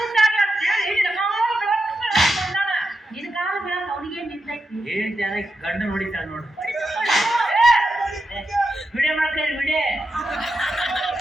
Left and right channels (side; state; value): both; normal; correlation 0.87